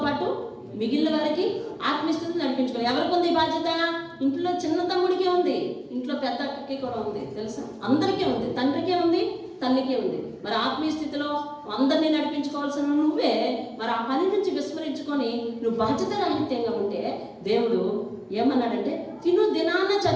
పాటు మిగిలిన వారికి ఆత్మీయ స్థితిని నడిపించుకోవాలి. ఎవరికి ఉంది బాధ్యత? ఇంట్లో చిన్న తమ్ముడికే ఉంది, ఇంట్లో పెద్ద అక్కకి కూడా ఉంది. తెలుసా? అందరికీ ఉంది. తండ్రికే ఉంది, తల్లికే ఉంది. మరి ఆత్మీయ స్థితిలో అందరినీ నడిపించుకోవాల్సిన నువ్వే మరి ఆ పని నుంచి విస్మరించుకో ఉంచుకొని నువ్వు బాధ్యత రాహిత్యంగా ఉంటే దేవుడు ఏమన్నాడంటే తిను దినాన్నే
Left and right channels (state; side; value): identical; both; correlation 1.00